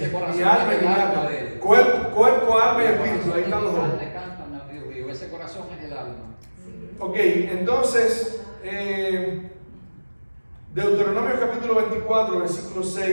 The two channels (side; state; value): both; inverted; correlation -1.00